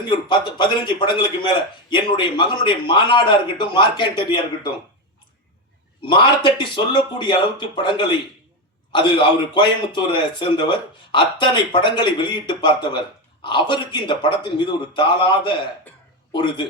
ஒரு 15 படங்களுக்கு மேல, என்னுடைய மகனுடைய மாநாடா இருக்கட்டும், மார்க்கண்டரியா இருக்கட்டும், மார்த்தட்டி சொல்லக்கூடிய அளவுக்கு படங்களை, அது அவர் கோயம்புத்தூரை சேர்ந்தவர், அத்தனை படங்களை வெளியிட்டு பார்த்தவர். அவருக்கு இந்த படத்தின் மீது ஒரு தாளாத ஒரு இது.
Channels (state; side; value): normal; both; correlation 0.12